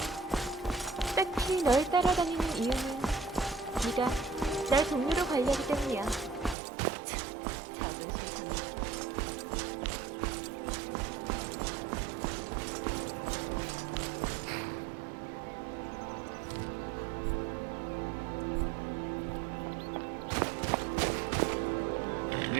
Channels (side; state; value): left; drops out; at 6.6 s